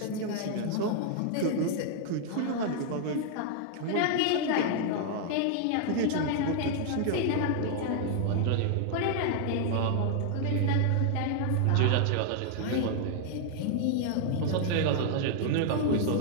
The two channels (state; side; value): different; both; correlation 0.00